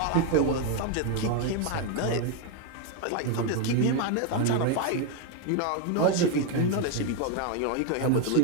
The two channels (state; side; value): different; both; correlation 0.01